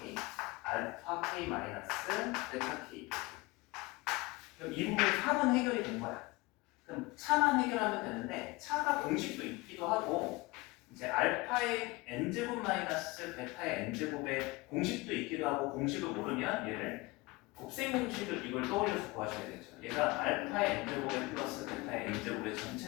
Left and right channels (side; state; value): right; quieter; 22.9 dB